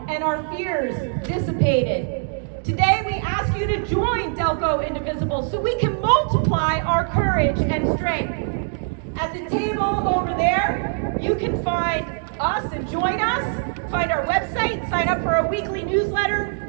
and our fears dissipated. Today, we ask you to join Delco Indivisible so we can multiply our courage and strength. At the table over there, you can find us and join us, find our website, sign up for our weekly newsletter,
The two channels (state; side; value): silent; left; 61 dB below the other